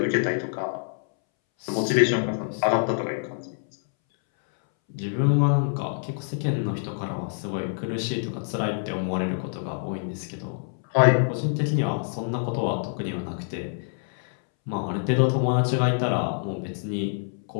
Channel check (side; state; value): right; silent; 61 dB below the other